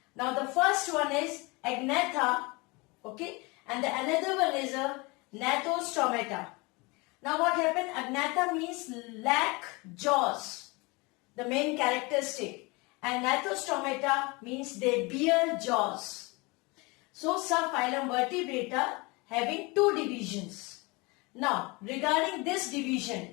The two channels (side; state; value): right; quieter; 26.1 dB